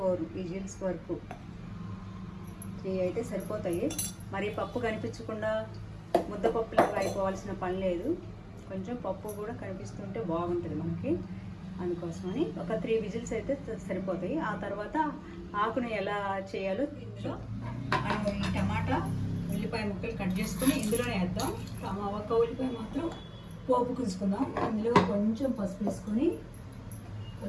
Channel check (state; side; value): identical; both; correlation 1.00